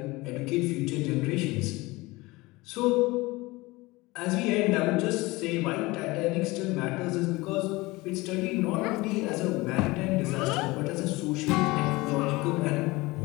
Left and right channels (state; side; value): quieter; right; 21.8 dB